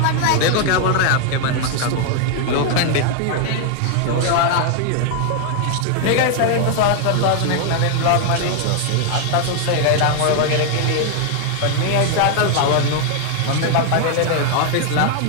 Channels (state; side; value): different; both; correlation 0.00